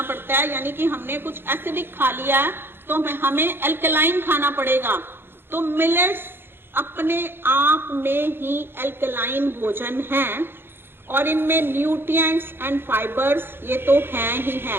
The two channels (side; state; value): left; late; 0.10 ms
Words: पड़ता है, यानी कि हमने कुछ एसिडिक खा लिया है तो हमें एल्कलाइन खाना पड़ेगा। तो मिलेट्स अपने आप में ही एल्कलाइन भोजन हैं, और इनमें न्यूट्रिएंट्स एंड फाइबर्स ये तो हैं ही